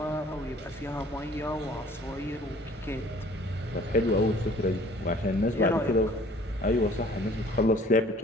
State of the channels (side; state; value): both; normal; correlation 0.52